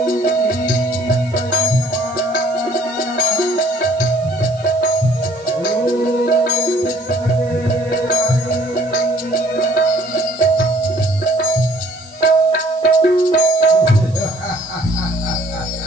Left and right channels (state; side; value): noise; right; hiss, 26 dB below the sound